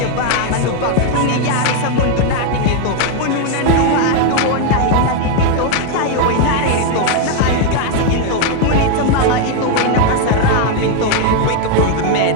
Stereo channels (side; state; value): both; different; correlation 0.01